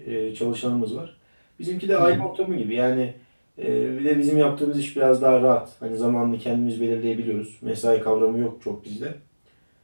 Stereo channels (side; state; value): both; inverted; correlation -1.00